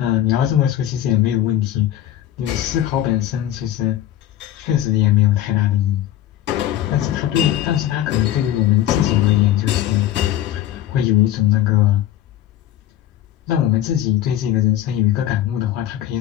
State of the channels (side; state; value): right; quieter; 12.3 dB